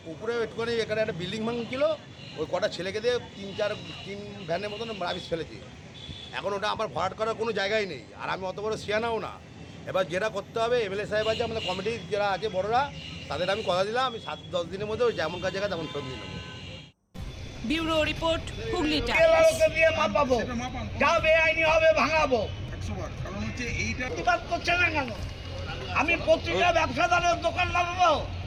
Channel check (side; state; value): both; identical; correlation 1.00